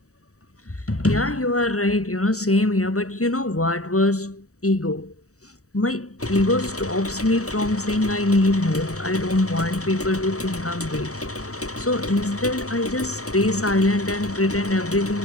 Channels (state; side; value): late; right; 0.65 ms